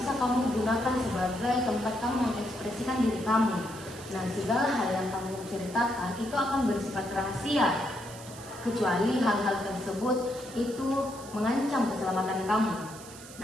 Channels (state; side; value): noise; right; hiss, 17 dB below the sound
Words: kamu gunakan sebagai tempat kamu mengekspresikan diri kamu. Nah, segala hal yang kamu ceritakan itu akan bersifat rahasia, kecuali hal-hal tersebut itu mengancam keselamatan kamu.